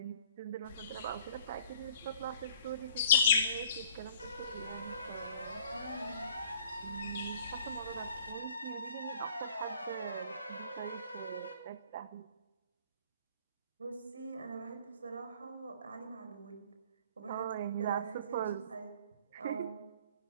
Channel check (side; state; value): both; inverted; correlation -0.55